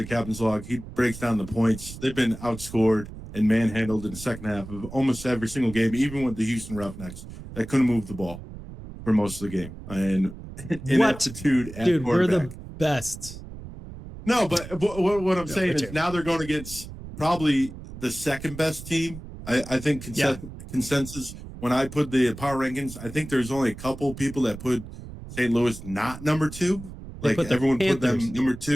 captain's log, he breaks down the points. They've been outscored and manhandled in the second half of almost every single game, even with the Houston Roughnecks that couldn't move the ball for most of the game. And ineptitude at dude, quarterback. We're the best. No, but what I'm saying is now they're going against probably the second best team. I think consensus, when I put the power rankings, I think there's only a couple people that put St. Louis not number 2. Like everyone put them number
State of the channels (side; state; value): right; noise; rumble, 13 dB below the sound